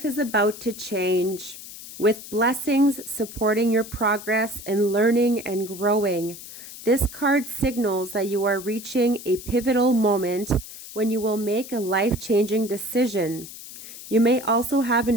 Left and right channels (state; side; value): noise; left; hiss, 14 dB below the sound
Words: is about to change, with blessings supporting your progress in learning and growing. This card signals that you are reaching a pivotal moment when you will make a life-changing decision. You may also have an